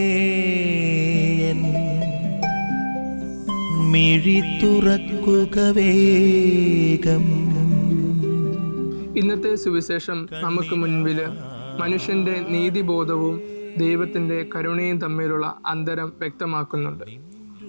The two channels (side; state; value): both; inverted; correlation -1.00